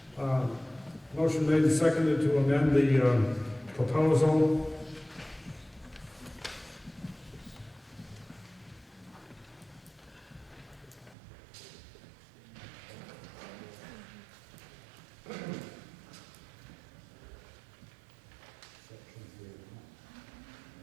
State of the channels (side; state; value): left; drops out; at 11.2 s